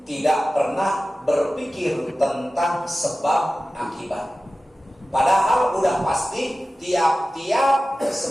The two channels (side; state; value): both; normal; correlation 0.95